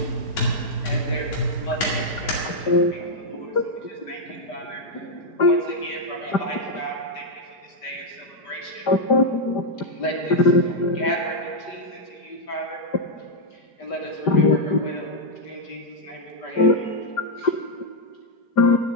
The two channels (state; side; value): late; right; 5.2 ms